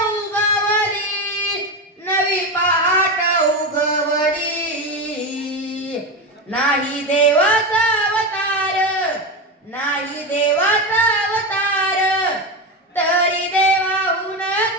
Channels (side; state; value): both; normal; correlation 0.17